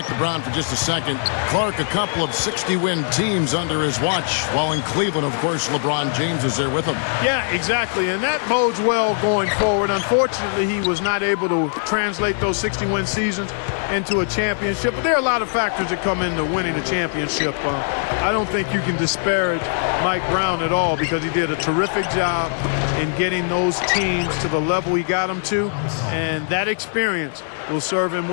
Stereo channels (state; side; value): silent; right; digital silence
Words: to Brown for just a second. Clark, a couple of 60-win teams under his watch, while in Cleveland, of course, LeBron James is there with him. Yeah, exactly, and that bodes well going forward. Unfortunately, he was not able to translate those 60-win seasons into a championship, but there are a lot of factors that come into winning a championship. I don't think you can disparage Mike Brown at all because he did a terrific job in getting those teams to the level he got them to, and that experience will serve him